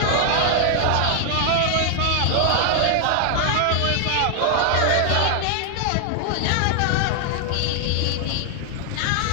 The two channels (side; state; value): both; different; correlation 0.00